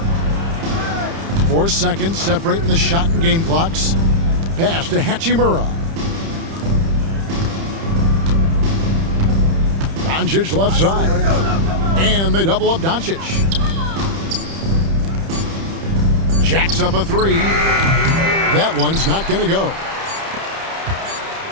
4 seconds separating the shot and game clocks. Pass to Hachimura. Doncic left side. And they double up Doncic. Jacks up a 3. That one's not going to go.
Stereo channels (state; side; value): late; left; 30 ms